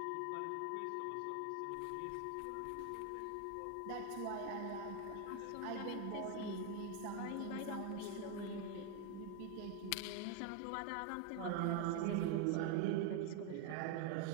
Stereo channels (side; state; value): both; different; correlation 0.01